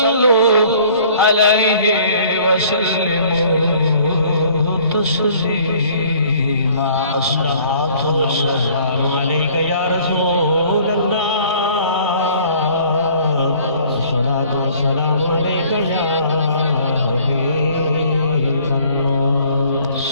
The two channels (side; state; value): both; inverted; correlation -0.55